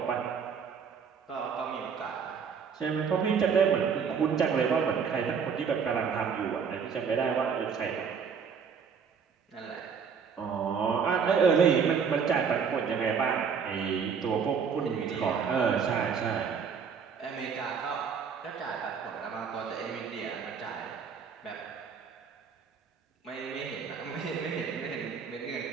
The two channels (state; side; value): quieter; left; 6.4 dB